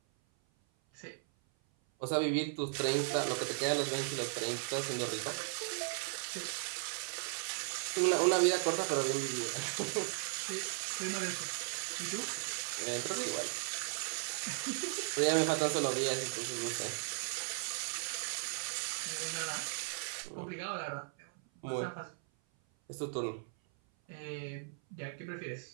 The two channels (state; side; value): silent; left; 53 dB below the other